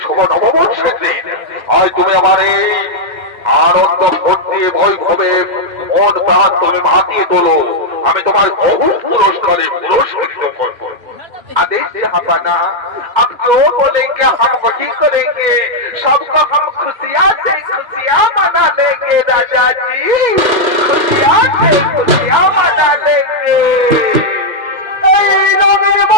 শুভ নববর্ষের দিন। আজ তুমি আমার এই আনন্দ ফুর্তি বৈভবে মন প্রাণ তুমি মাতিয়ে তোলো, আমি তোমার বহু পুরস্কারে পুরস্কৃত করবো। आदेश जहांपना, अब जो बोलेंगे हम वही करेंगे, सबको हम खुशियाँ से खुशियाँ मना लेंगे राजा जी, खुशियाँ से खुशियाँ मना लेंगे।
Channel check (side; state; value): left; late; 2.1 ms